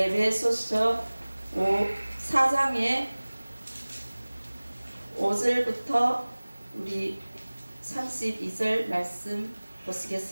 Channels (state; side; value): inverted; both; correlation -1.00